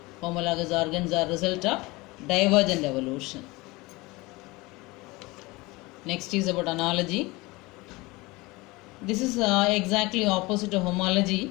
Homologous organs are result of divergent evolution. Next is about analogy. This is exactly opposite to homology.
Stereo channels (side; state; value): right; quieter; 22.8 dB